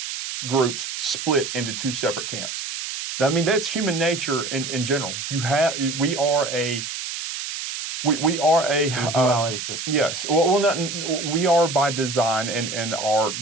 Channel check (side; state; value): right; noise; hiss, 6 dB below the sound